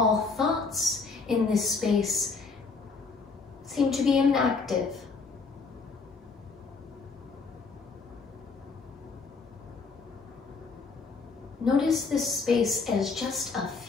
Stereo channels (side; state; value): right; quieter; 4.4 dB